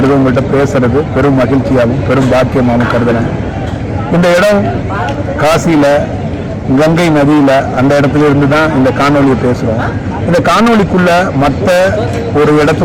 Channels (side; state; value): both; identical; correlation 1.00